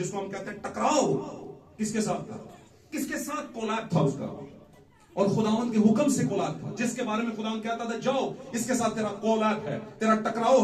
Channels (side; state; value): both; identical; correlation 1.00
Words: हम कहते हैं टकराव, किसके साथ था? किसके साथ कोलैप्स था उसका? और खुदावंद के हुक्म से कोलैप्स था, जिसके बारे में खुदावंद कहता था, जाओ इसके साथ तेरा कोलैप्स है, तेरा